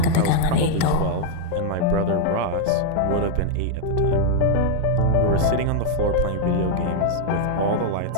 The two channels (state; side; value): different; both; correlation 0.00